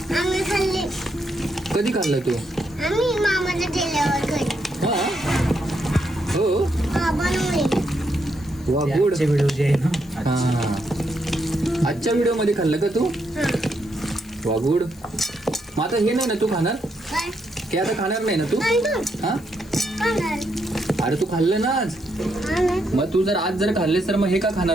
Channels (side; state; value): left; noise; hiss, 25 dB below the sound